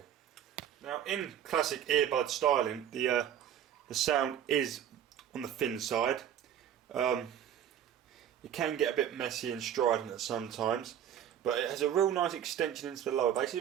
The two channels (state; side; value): quieter; left; 9.9 dB